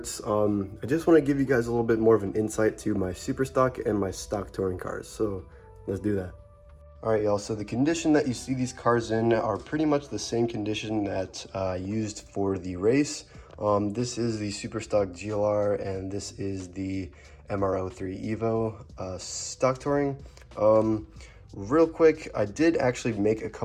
I just want to give you guys a little bit more of an insight to my super stock and my stock touring cars, so let's do that. Alright y'all, so the condition that you see these cars in are pretty much the same condition that I used for the race. This is the super stock GLR and this is the MR03 Evo stock touring. Real quick, I did actually make a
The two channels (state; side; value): identical; both; correlation 1.00